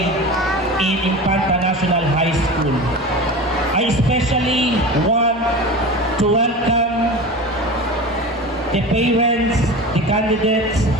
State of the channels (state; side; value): normal; both; correlation 0.31